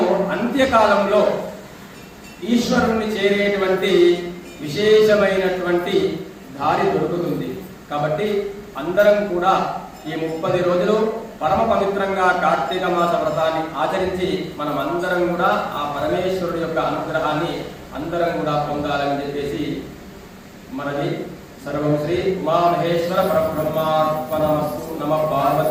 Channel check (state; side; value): identical; both; correlation 1.00